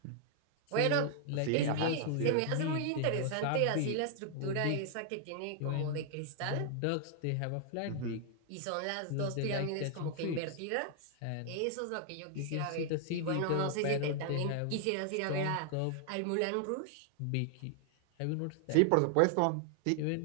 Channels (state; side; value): different; both; correlation 0.00